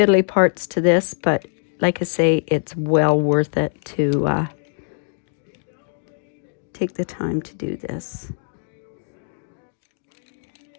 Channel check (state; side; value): silent; right; digital silence